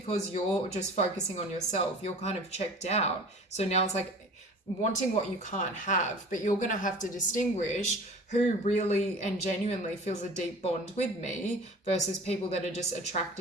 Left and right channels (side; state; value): both; normal; correlation 0.42